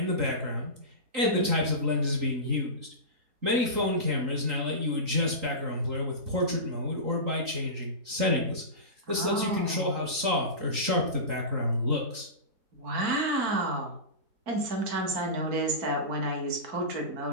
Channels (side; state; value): left; late; 3.8 ms